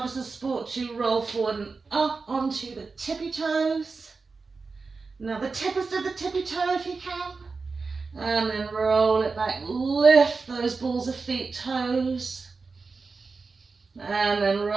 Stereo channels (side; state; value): left; quieter; 4.3 dB